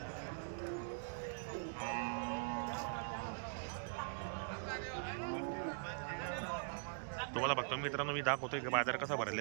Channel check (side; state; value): left; silent; digital silence